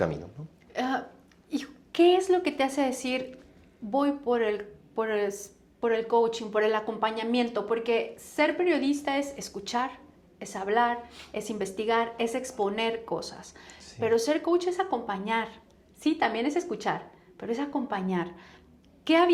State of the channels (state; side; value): identical; both; correlation 1.00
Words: ¿no? ¿Y qué es lo que te hace decir, voy por el coaching, por el acompañamiento? Porque ser periodista es escuchar, es hablar, es investigar, es exponer cosas. Sí. Pero ser coach es acompañar. Sí, también es escuchar, pero es acompañar. ¿Qué